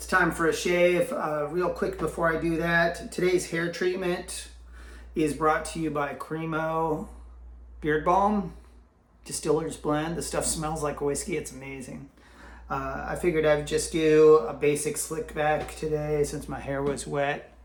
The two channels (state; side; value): identical; both; correlation 1.00